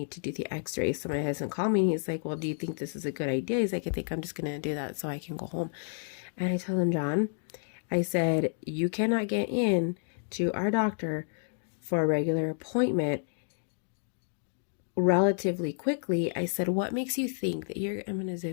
to do the x-rays. So my husband called me and he's like, well, do you think this is a good idea? He's like, I think I'm just going to do that so I can go home. And I told him, John, I said, you cannot get in to our doctor for a regular appointment relatively quickly. I said, what makes you think that I'm going to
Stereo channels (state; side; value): silent; right; digital silence